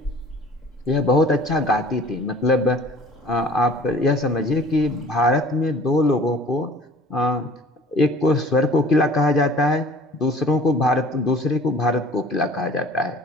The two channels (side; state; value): both; normal; correlation 0.48